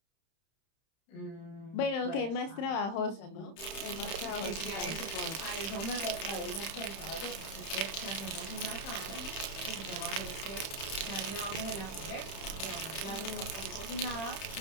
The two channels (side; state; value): right; late; 31 ms